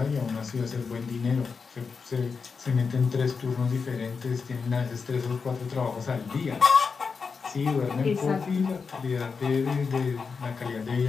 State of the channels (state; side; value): quieter; right; 5.2 dB